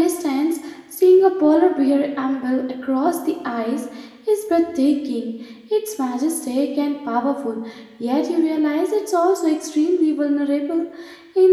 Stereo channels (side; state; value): both; identical; correlation 1.00